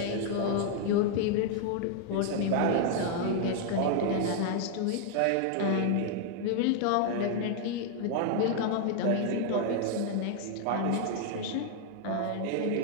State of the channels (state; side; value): different; both; correlation 0.00